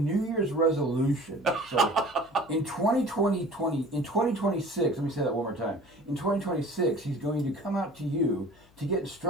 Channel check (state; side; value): noise; left; hum, 29 dB below the sound